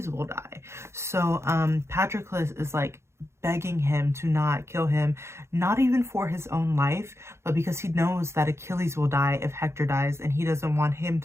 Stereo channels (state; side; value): late; left; 0.13 ms